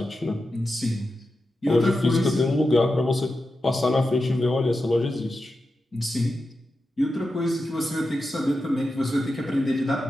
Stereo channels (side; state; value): both; normal; correlation 0.90